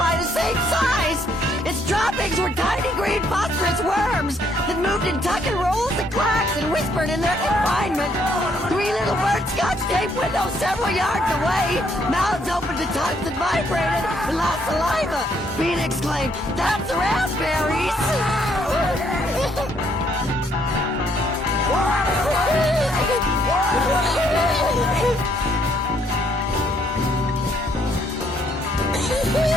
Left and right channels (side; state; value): both; normal; correlation 0.69